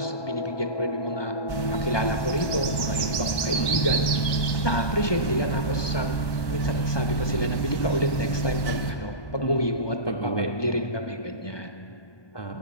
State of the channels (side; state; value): right; late; 1.1 ms